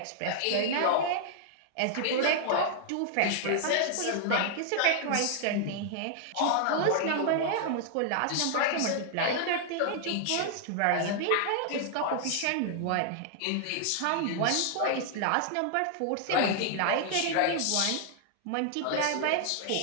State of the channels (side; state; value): both; different; correlation -0.01